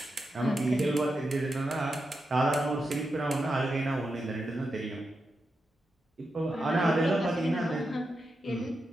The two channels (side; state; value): both; normal; correlation 0.88